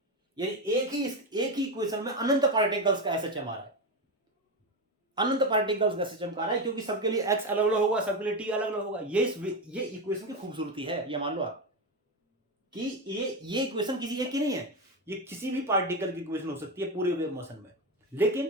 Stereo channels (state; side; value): normal; both; correlation 0.14